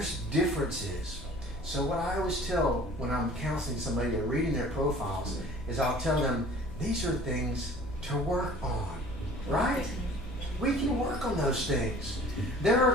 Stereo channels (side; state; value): both; normal; correlation 0.48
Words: differences. So what I always tell when I'm counseling somebody or reading their profiles is I'll tell them, these are things to work on, right? We can work on those things. There